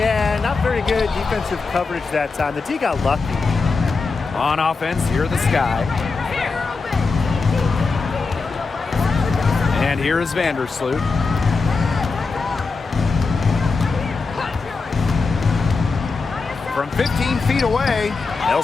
not very good defensive coverage that time. The D got lucky. On offense, here the Sky. And here is Vandersloot. From 15 feet away,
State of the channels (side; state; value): right; quieter; 4.3 dB